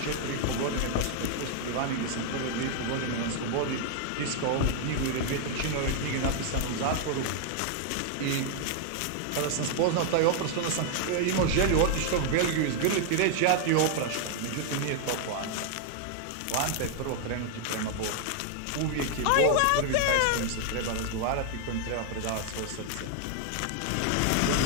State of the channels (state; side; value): different; both; correlation 0.00